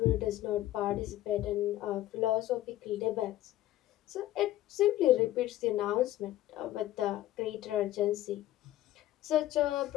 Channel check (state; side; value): quieter; right; 14.5 dB